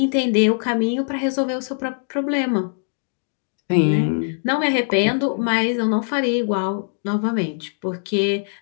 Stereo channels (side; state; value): right; silent; digital silence